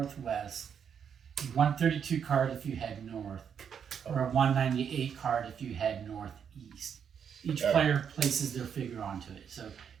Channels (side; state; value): left; quieter; 7.6 dB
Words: a 132 card if you head north, or a 198 card if you head northeast. Each player places their figure onto it. So